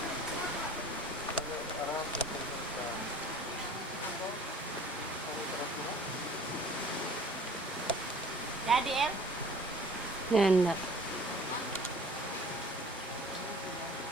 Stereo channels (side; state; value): both; normal; correlation 0.49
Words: Jadi El, Nanda.